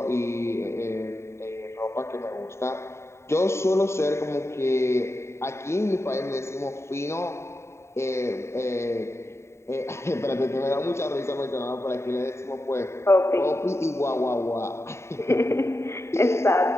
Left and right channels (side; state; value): right; late; 0.13 ms